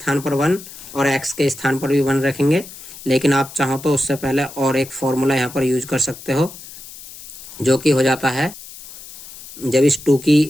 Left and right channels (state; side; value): noise; left; hiss, 16 dB below the sound